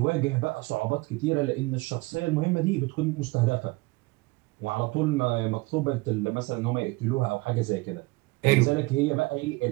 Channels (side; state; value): left; quieter; 23.3 dB